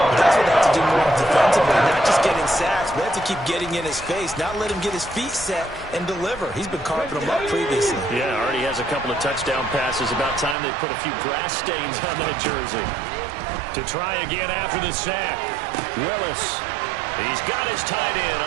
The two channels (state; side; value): drops out; left; at 10.6 s